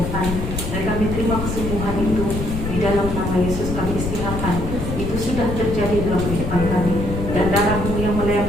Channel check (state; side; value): noise; left; rumble, 5 dB below the sound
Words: dan kami terima kesembuhan itu di dalam nama Yesus. Kami istiharkan itu sudah terjadi dalam kehidupan kami, dan darah-Mu yang